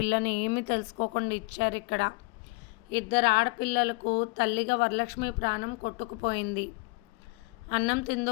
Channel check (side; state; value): right; quieter; 27.0 dB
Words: ఏమీ తెలుసుకోకుండా ఇచ్చారు ఇక్కడ. ఇద్దరు ఆడపిల్లలకు తల్లిగా వరలక్ష్మి ప్రాణం కొట్టుకుపోయింది. అన్నం